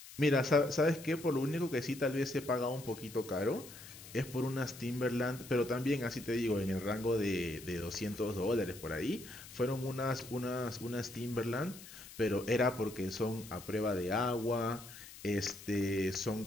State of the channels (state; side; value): noise; left; hiss, 16 dB below the sound